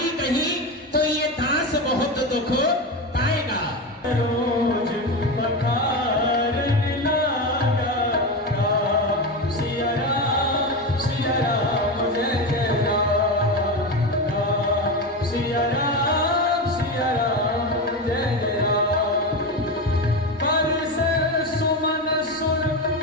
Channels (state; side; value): normal; both; correlation 0.18